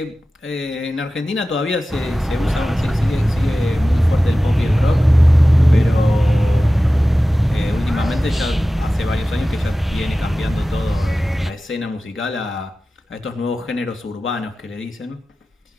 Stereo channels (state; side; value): normal; both; correlation 0.95